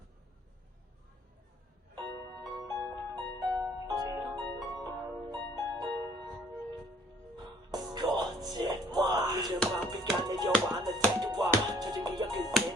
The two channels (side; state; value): both; normal; correlation 0.59